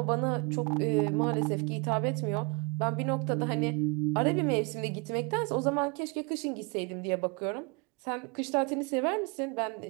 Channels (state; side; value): quieter; left; 29.4 dB